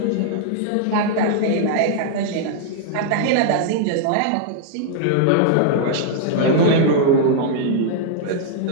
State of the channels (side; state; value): both; different; correlation -0.01